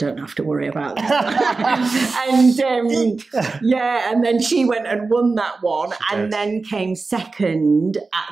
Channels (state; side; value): quieter; left; 3.9 dB